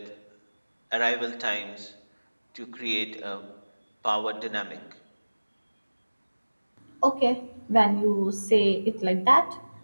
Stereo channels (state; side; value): inverted; both; correlation -1.00